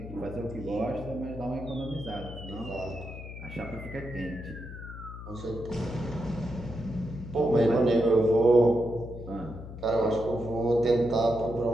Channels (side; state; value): left; noise; hum, 11 dB below the sound